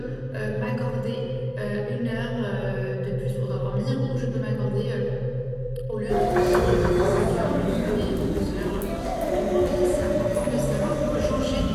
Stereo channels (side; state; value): both; identical; correlation 1.00